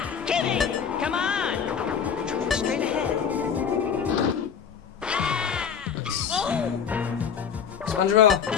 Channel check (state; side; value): quieter; right; 7.3 dB